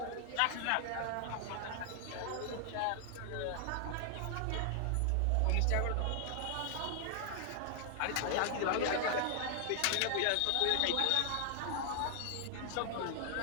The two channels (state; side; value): different; both; correlation 0.00